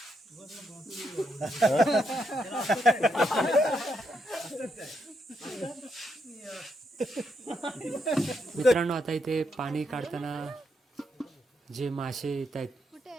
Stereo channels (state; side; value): normal; both; correlation 0.79